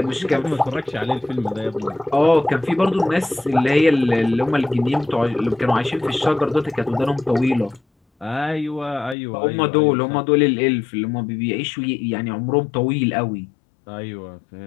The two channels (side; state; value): right; drops out; at 9.2 s